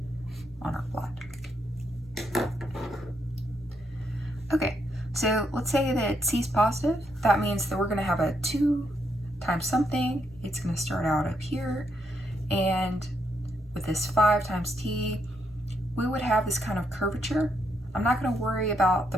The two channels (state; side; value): noise; left; rumble, 27 dB below the sound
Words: on our plot. Okay, so let's say that c is positive. That means that we're going to have a 2 times something. It's going to start out up here, and with this 5 times t, we would have this kind of curvature. I'm not going to worry about